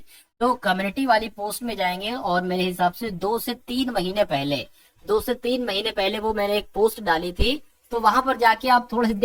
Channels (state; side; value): identical; both; correlation 1.00